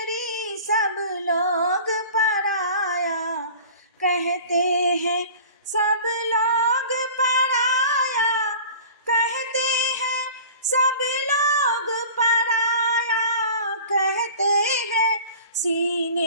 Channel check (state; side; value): inverted; both; correlation -0.41